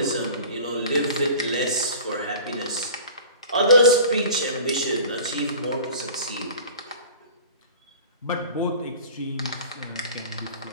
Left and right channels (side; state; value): both; inverted; correlation -0.41